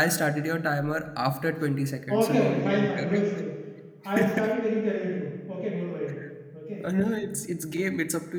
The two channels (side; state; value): both; identical; correlation 1.00